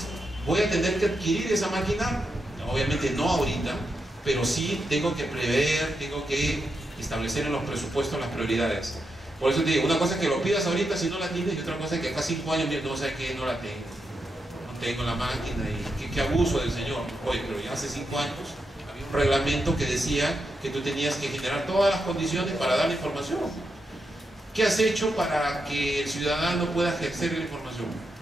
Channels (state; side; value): normal; both; correlation 0.85